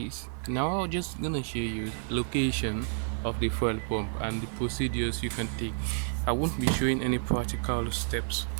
Now I'm just gonna show you location of the fuel pump and the procedures you can take. I won't be showing any practical steps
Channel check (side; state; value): left; silent; 58 dB below the other